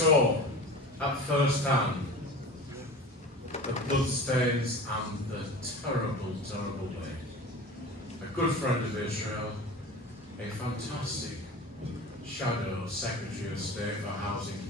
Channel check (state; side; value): normal; both; correlation 0.35